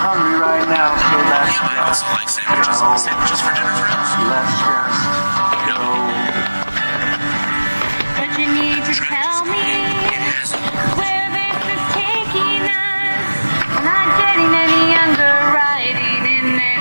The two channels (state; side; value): inverted; both; correlation -1.00